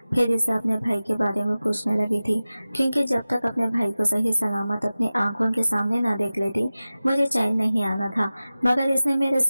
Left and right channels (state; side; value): inverted; both; correlation -0.96